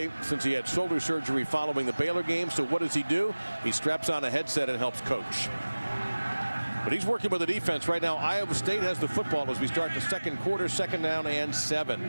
since he had shoulder surgery following the Baylor game. So what does he do? He straps on a headset and helps coach. But he's working with the defense right now. Iowa State has the football as we start the second quarter, 2nd down and 7.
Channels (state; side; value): inverted; both; correlation -1.00